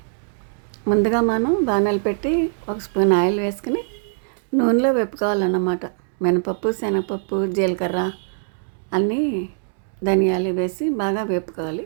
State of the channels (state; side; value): silent; left; digital silence